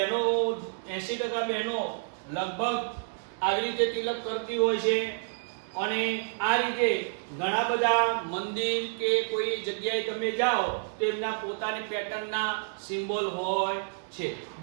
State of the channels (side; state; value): left; silent; digital silence